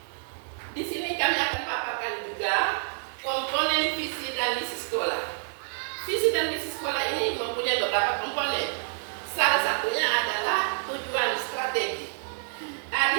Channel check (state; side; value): silent; left; 55 dB below the other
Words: Di sini kami akan paparkan juga komponen visi dan misi sekolah. Visi dan misi sekolah ini mempunyai beberapa komponen. Salah satunya adalah tujuan strategi. Di